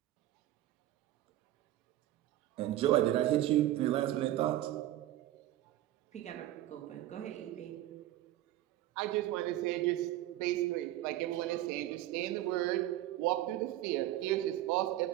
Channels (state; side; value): quieter; left; 14.2 dB